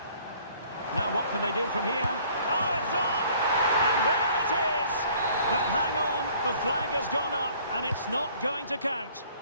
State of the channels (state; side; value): inverted; both; correlation -0.56